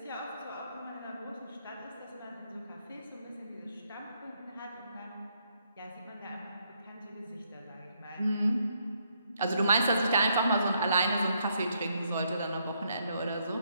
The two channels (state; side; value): inverted; both; correlation -0.74